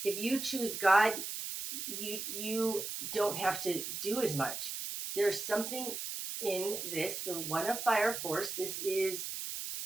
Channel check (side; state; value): right; noise; hiss, 5 dB below the sound